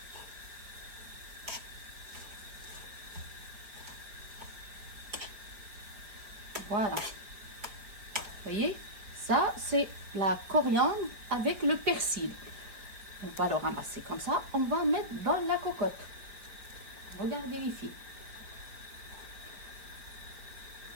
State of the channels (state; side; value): late; left; 5.0 ms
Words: Voilà. Vous voyez, ça c'est la coriandre avec le persil. On va le ramasser comme ça. On va mettre dans la cocotte. Regardez ici.